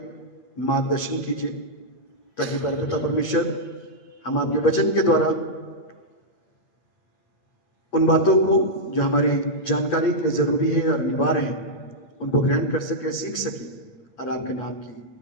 मार्गदर्शन कीजिए ताकि पिता परमेश्वर हम आपके वचन के द्वारा उन बातों को जो हमारी जानकारी के लिए जरूरी है और अनिवार्य है उनको ग्रहण कर सके, सीख सके और आपके नाम की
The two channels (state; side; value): late; right; 8.5 ms